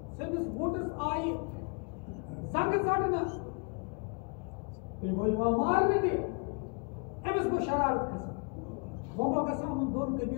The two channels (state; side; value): quieter; right; 35.1 dB